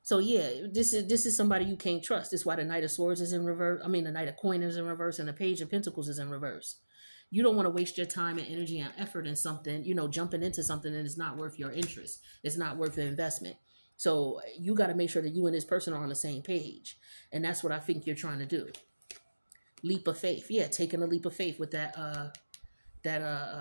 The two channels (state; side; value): inverted; both; correlation -1.00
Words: So yeah, this is somebody you can't trust. This is why the Knight of Swords is in reverse. I mean, the Knight of Coin is in reverse, and the Page of Pentacles is in reverse. You don't want to waste your time and energy and effort in something, jumping into something that is not worth your interest. It's not worth the investment. So you got to make sure that you and this person are on the same page, and that's what I think you're trying to do. Leap of faith, yeah, taking a leap of faith with that